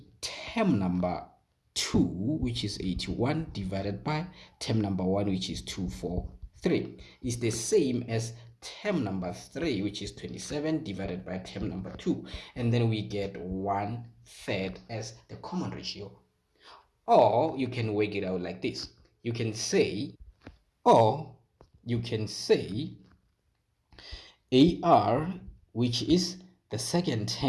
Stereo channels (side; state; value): both; identical; correlation 1.00